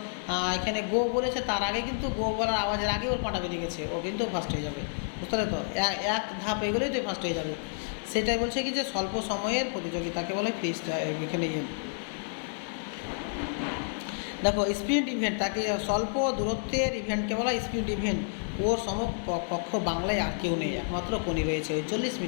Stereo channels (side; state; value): right; silent; digital silence